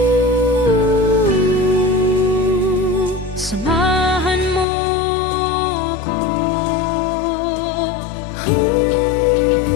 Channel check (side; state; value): right; drops out; at 4.7 s